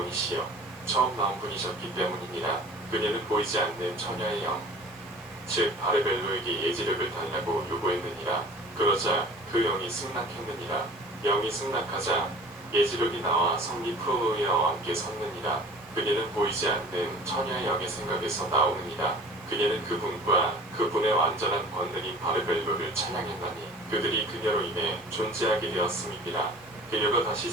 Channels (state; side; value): normal; both; correlation 0.44